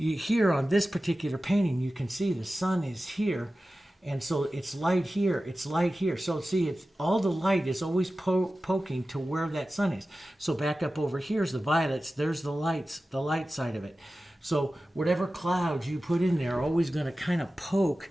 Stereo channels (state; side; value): normal; both; correlation 0.95